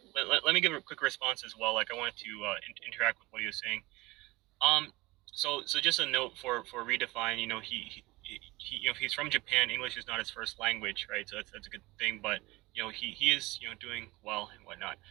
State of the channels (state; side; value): quieter; left; 21.3 dB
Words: but let me give a quick response as well. Like I wanted to interact with what he was saying. So just a note for Redefine. You know, he you know, he's from Japan. English is not his first language, right? So that's a good thing. But you know, he is, you know, doing well and whatnot.